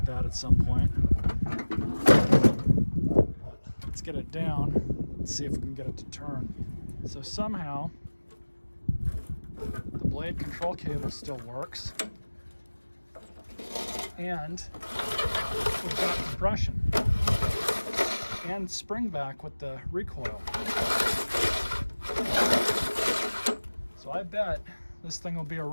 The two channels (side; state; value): both; inverted; correlation -1.00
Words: that at some point. Let's get it down and see if we can get it to turn. So somehow the blade control cable still works, and we've got compression and spring back with the recoil. So I bet this thing will be a